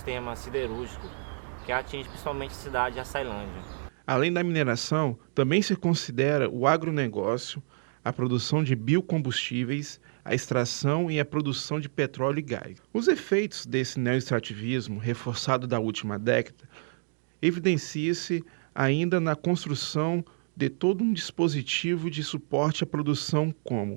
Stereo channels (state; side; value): silent; left; digital silence